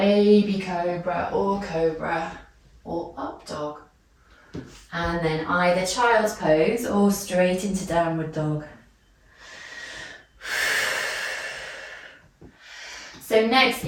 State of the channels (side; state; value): both; identical; correlation 1.00